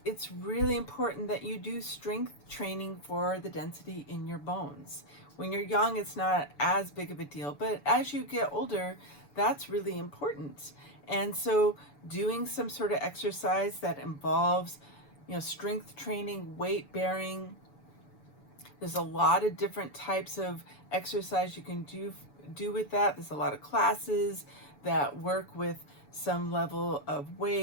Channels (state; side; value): late; right; 7.0 ms